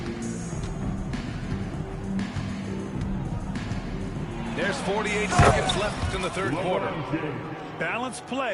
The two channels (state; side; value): identical; both; correlation 1.00